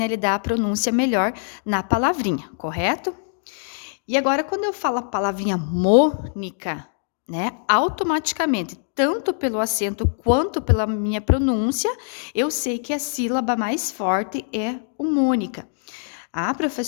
Ele dá a pronúncia melhor na palavrinha, correto? E agora, quando eu falo a palavrinha Mônica, né? Automaticamente, tanto pelo acento quanto pela minha pronúncia, eu sei que a sílaba mais forte é o Mônica. Ah,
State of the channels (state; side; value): silent; right; digital silence